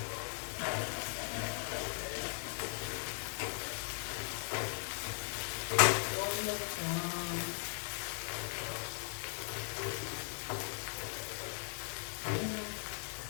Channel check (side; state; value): right; silent; 52 dB below the other